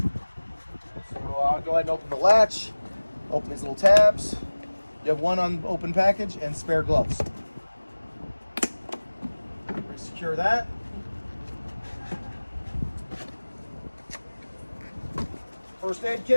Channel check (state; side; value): inverted; both; correlation -1.00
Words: So I'll go ahead and open the latch. Open these little tabs. You have one unopened package and spare gloves. Secure that. First aid